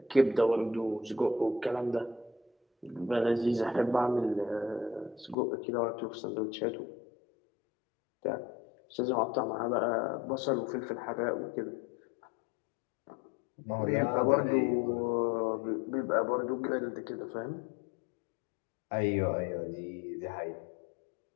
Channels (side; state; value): right; drops out; at 5.4 s